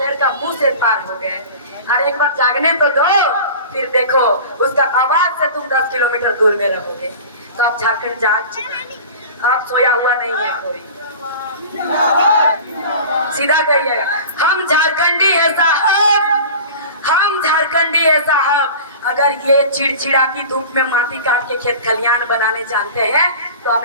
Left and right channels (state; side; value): inverted; both; correlation -0.37